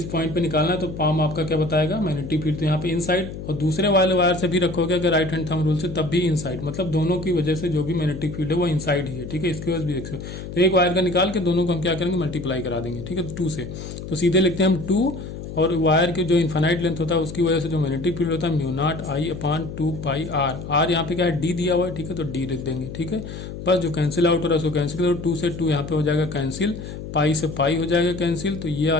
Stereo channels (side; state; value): left; noise; hum, 9 dB below the sound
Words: पॉइंट पे निकालना है, तो पाम आपका क्या बताएगा मैग्नेटिक फील्ड। तो यहाँ पे इनसाइड, और दूसरे वाले वायर से भी रखोगे अगर राइट हैंड थंब रूल से, तब भी इनसाइड। मतलब दोनों की वजह से जो भी मैग्नेटिक फील्ड है वो इनसाइड ही है, ठीक है। इसकी वजह से भी देख सकते हो। तो एक वायर का निकाल के दोनों को हम क्या करेंगे, मल्टीप्लाई करा देंगे, ठीक है, 2 से। तो सीधे लिखते हैं हम 2, और वायर के जो इन्फाइनाइट लेंथ होता है उसकी वजह से जो मैग्नेटिक फील्ड होता है μ0I/2πr। r यहाँ पे क्या है, d दिया हुआ है, ठीक है। तो d लिख देंगे, ठीक है। बस जो कैंसिल आउट हो रहा है उसको कैंसिल करो, 2 से 2 यहाँ पे हो जाएगा कैंसिल, पाई से पाई हो जाएगा कैंसिल। तो ये आ